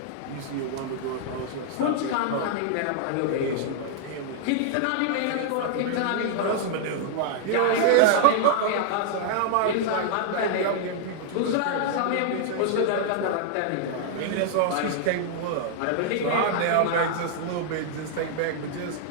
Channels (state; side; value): different; both; correlation -0.01